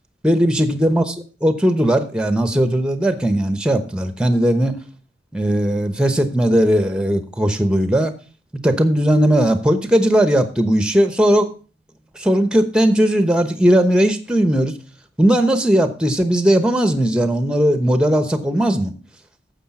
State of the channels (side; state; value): both; normal; correlation 0.89